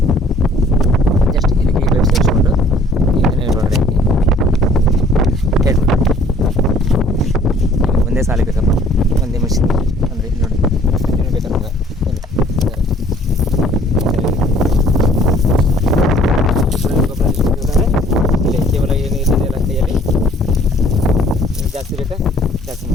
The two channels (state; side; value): normal; both; correlation 0.57